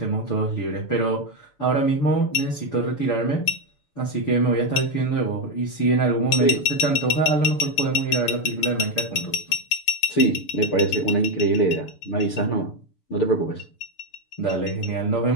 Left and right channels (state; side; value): late; right; 6.9 ms